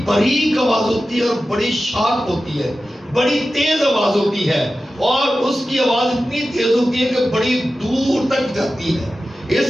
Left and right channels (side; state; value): both; normal; correlation 0.94